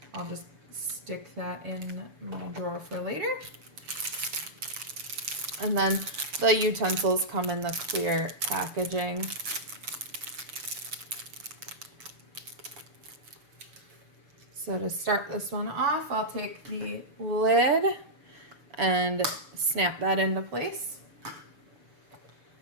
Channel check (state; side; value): late; left; 6.9 ms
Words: I'll just stick that in my drawer for later. And then the utensils come in the clear packaging. So to start this one off, I'll take the lid and snap that into place.